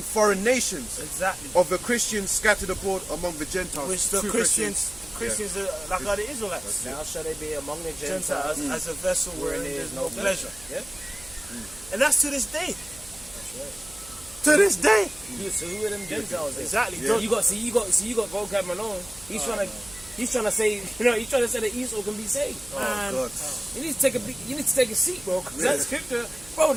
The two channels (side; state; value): right; noise; hum, 21 dB below the sound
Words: foreign nations, Exactly. of the Christians scattered abroad among the Gentiles. Which the True Christians are like the Israelites. Now shall they be among the Gentiles Gentiles. as a vessel wherein there is no pleasure. Yeah. And that's to this day. To this day. So who are them Gentiles? Then? Exactly. You got vocab Malone. He's trying to say, he's trying to say that Esau can be saved. Man, God. You need to take a seat, bro. Cause that scripture, bro.